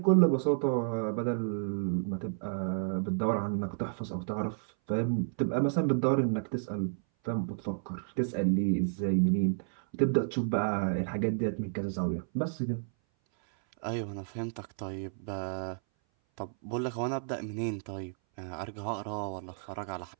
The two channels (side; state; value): left; silent; 57 dB below the other